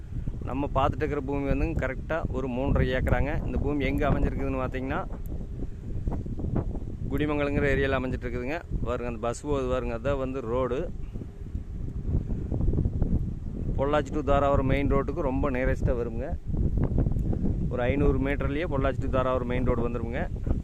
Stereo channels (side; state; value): both; identical; correlation 1.00